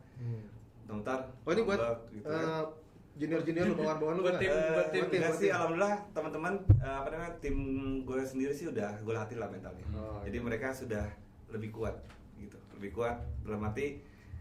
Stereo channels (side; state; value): both; identical; correlation 1.00